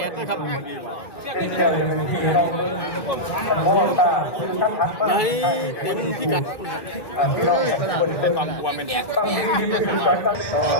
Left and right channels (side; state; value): right; late; 1.1 ms